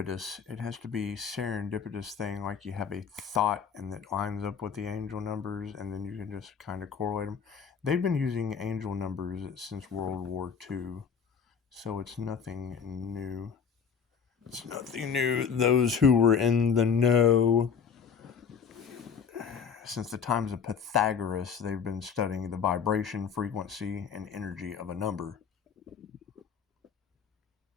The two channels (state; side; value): quieter; right; 6.6 dB